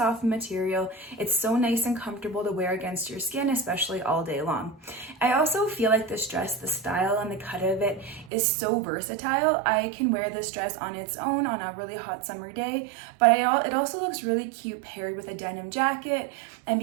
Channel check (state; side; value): drops out; left; at 8.3 s